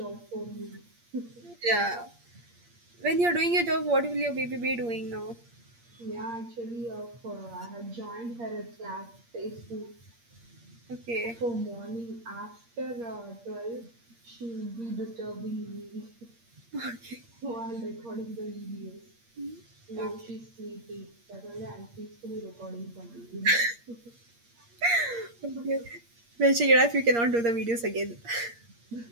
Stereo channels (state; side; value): late; left; 8.6 ms